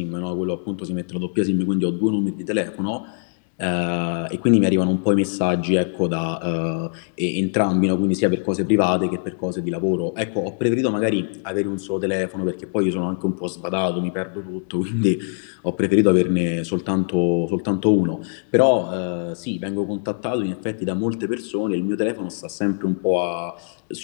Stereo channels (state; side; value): silent; right; 64 dB below the other